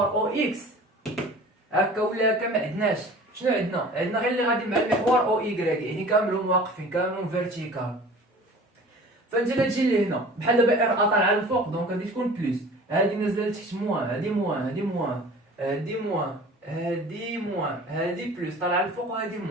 او اكس هكا ولا هكا ما عندناش. شنو عندنا غير اللي غادي مع المحور او ايكغيك، يعني كاملهم واقفين كاملهم فيرتيكال. فانت الا تجي لهنا بحال دابا ار طالعه للفوق دونك غادي تكون بلس، هادي نازله لتحت موان، هادي موان، هادي موان، هادي موان، هادي موان، هادي بلس. طالعه للفوق وهادي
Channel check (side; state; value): both; normal; correlation 0.43